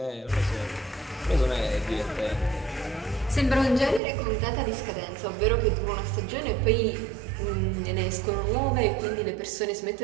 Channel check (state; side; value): drops out; left; at 4.0 s